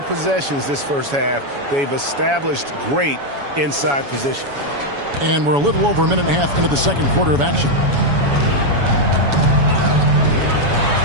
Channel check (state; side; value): late; left; 7.1 ms